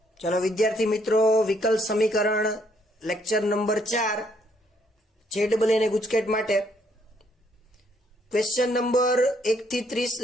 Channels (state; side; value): normal; both; correlation 0.69